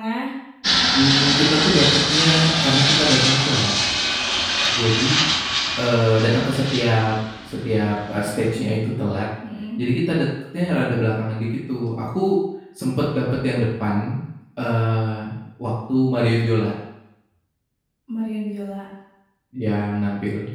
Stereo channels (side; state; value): both; identical; correlation 1.00